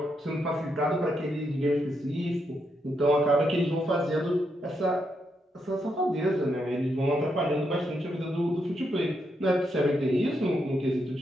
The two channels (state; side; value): normal; both; correlation 0.80